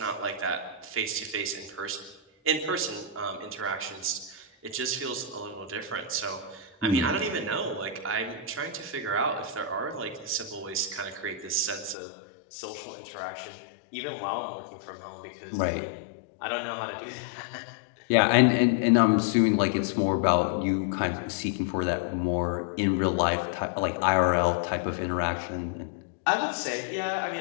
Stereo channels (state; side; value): drops out; right; at 12.0 s